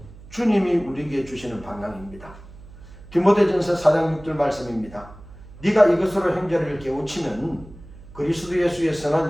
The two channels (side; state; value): right; noise; hum, 19 dB below the sound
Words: 주님이 우리에게 주시는 방향입니다. 디모데전서 4장 6절 말씀입니다. 네가 이것으로 형제를 깨우치면 그리스도 예수의